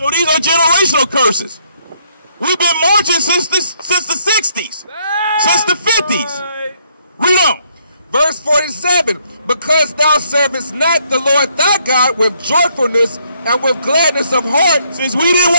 these are generational curses. We've been marching since the 60s, since the 50s. Read on. Verse 47. Because thou servest not the Lord thy God with joyfulness and with gladness of heart. Since we didn't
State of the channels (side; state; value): both; inverted; correlation -0.70